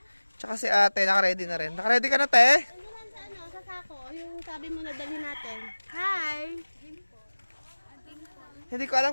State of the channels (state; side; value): inverted; both; correlation -1.00